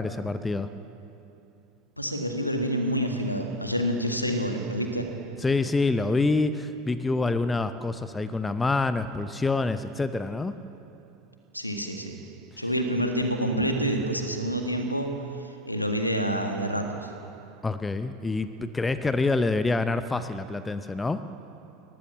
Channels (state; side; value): normal; both; correlation 0.33